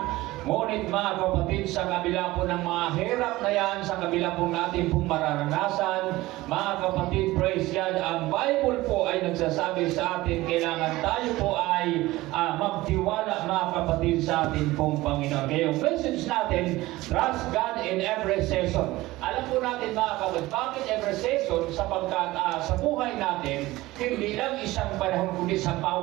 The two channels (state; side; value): quieter; left; 18.5 dB